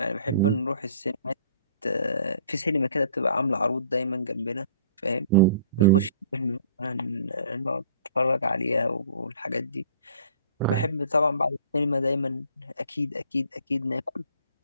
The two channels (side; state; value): both; inverted; correlation -0.52